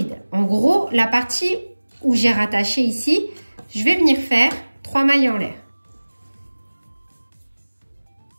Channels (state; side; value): inverted; both; correlation -1.00